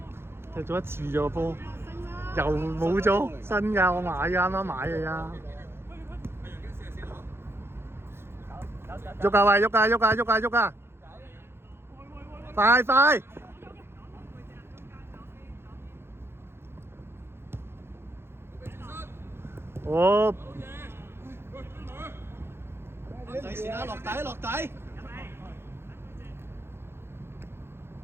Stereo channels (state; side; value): late; left; 0.12 ms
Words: 踢咗一次咗個波，又冇咗新㗎，我買㗎，啱啱買嘅呀。喐㗎喂，喐㗎！快！哦，第時啦，落底。